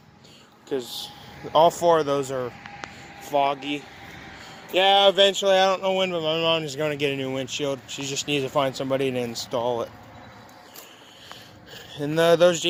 all four of those are foggy. Yeah, eventually, I don't know when, but my mom is going to get a new windshield. She just needs to find somebody to install it. And those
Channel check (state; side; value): identical; both; correlation 1.00